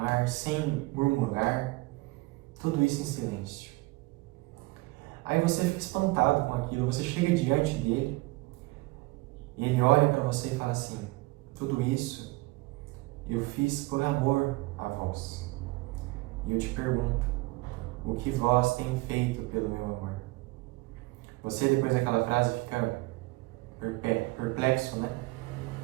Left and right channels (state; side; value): quieter; left; 22.4 dB